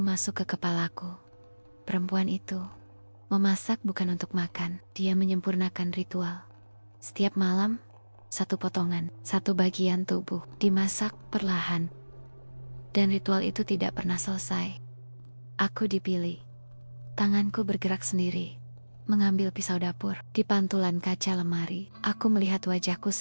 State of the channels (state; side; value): inverted; both; correlation -1.00